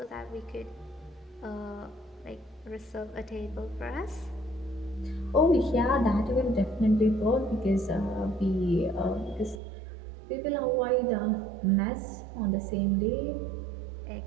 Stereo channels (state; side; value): drops out; left; at 9.6 s